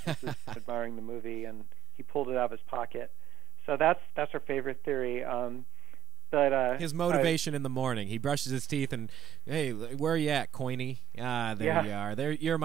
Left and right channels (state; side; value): quieter; left; 10.9 dB